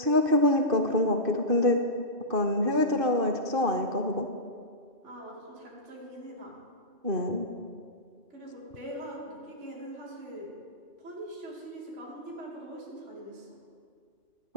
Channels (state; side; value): late; left; 2.5 ms